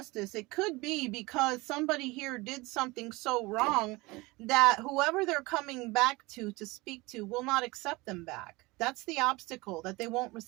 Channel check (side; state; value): left; quieter; 22.9 dB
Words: it could be because somebody here did something so wrong that whoever they're coming back to speak to will not accept them back. That's the obstacle, that they won't